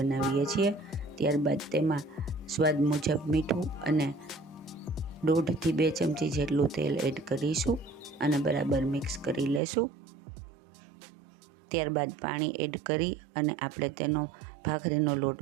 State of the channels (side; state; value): left; drops out; at 9.6 s